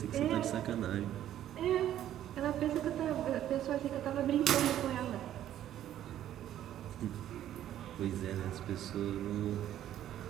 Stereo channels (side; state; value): left; quieter; 11.8 dB